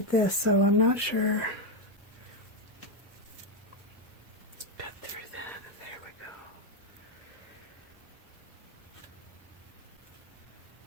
this, so I'm not sure. Cut through that, and there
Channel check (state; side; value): normal; both; correlation 0.05